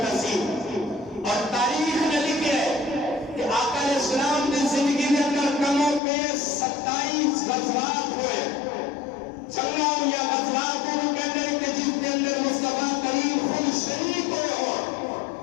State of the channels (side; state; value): right; drops out; at 6.0 s